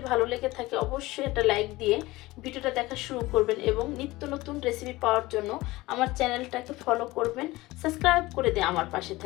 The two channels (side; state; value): right; quieter; 19.7 dB